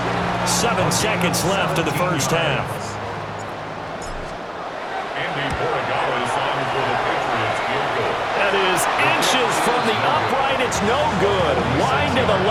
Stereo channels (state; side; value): identical; both; correlation 1.00